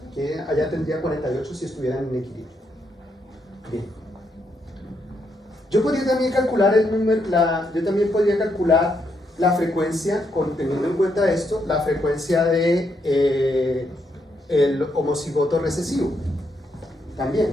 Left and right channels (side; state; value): both; normal; correlation 0.78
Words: Que allá tendría 48 si estuvieran en equilibrio. Bien. Yo podría también calcular la frecuencia, teniendo en cuenta esto, la frecuencia de el homocigoto recesivo.